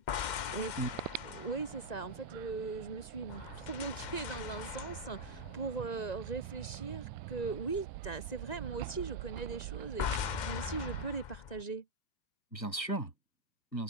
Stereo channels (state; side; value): late; right; 2.1 ms